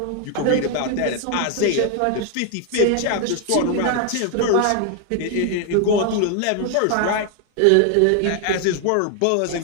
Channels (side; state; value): both; different; correlation 0.00